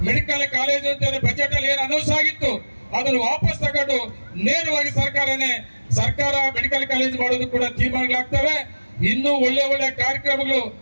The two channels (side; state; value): both; inverted; correlation -1.00